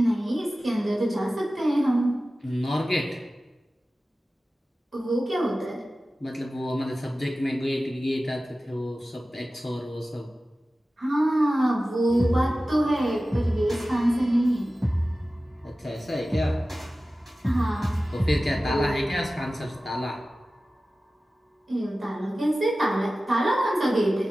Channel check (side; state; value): both; normal; correlation 0.96